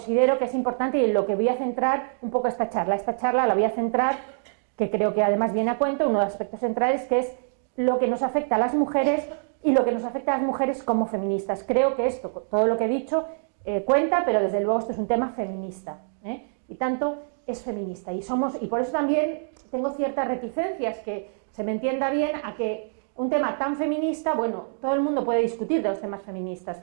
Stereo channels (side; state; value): left; silent; digital silence